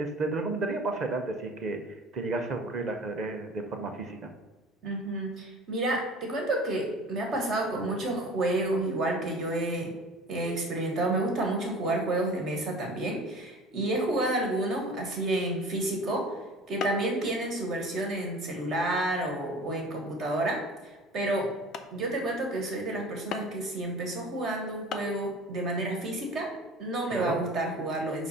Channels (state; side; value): normal; both; correlation 0.41